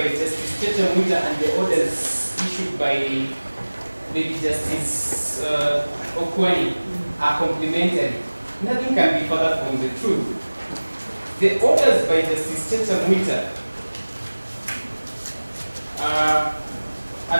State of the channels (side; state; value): both; inverted; correlation -1.00